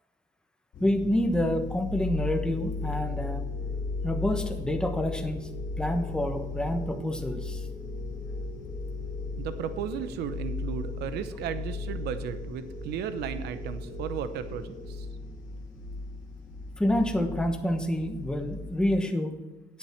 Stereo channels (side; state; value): both; normal; correlation 0.77